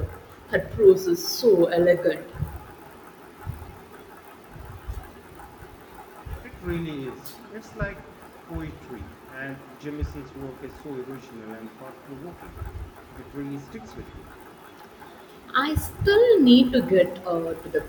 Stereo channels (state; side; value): identical; both; correlation 1.00